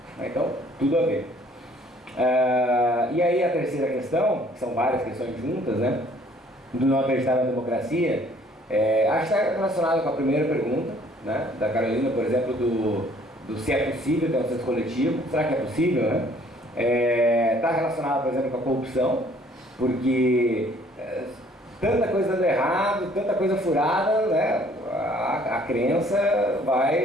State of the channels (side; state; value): both; normal; correlation 0.59